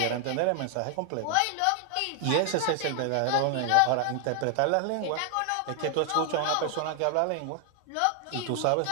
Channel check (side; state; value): both; different; correlation 0.00